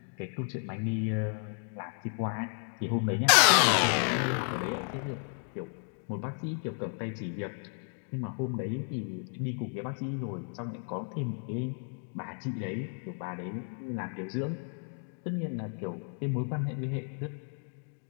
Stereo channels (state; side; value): silent; right; 56 dB below the other